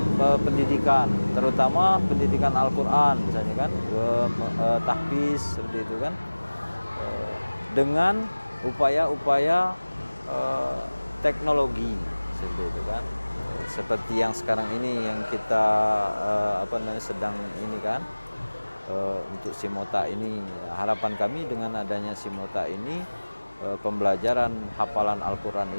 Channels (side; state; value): both; inverted; correlation -1.00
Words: pendidikan, terutama pendidikan Al-Quran misalnya kan, tahfiz seperti itu kan, dengan upaya-upaya teknologi seperti itu kan, seperti yang sekarang ini yang kita sedang ini kan, untuk Simota ini. Harapan kami dengan adanya Simota ini, pembelajaran hafalan Al-Quran